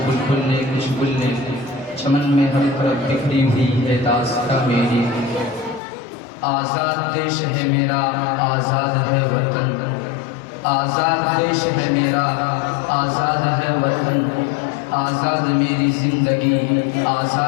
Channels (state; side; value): drops out; right; at 5.8 s